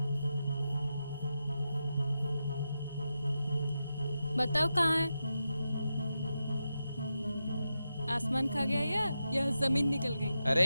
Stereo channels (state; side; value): inverted; both; correlation -0.88